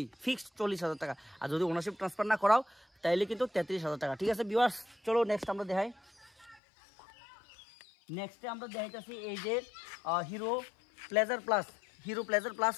ফিক্সড 40,000 টাকা। আর যদি ওনারশিপ ট্রান্সফার না করাও তাহলে কিন্তু 33,000 টাকা, ঠিক আছে ভিউয়ার্স। চলো নেক্সট আমরা দেখাই। নেক্সটে আমরা দেখাইতেছি এই যে হিরো প্লেজার প্লাস,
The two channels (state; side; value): drops out; right; at 6.6 s